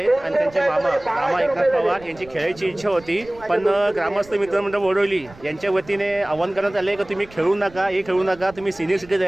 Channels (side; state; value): right; noise; rumble, 22 dB below the sound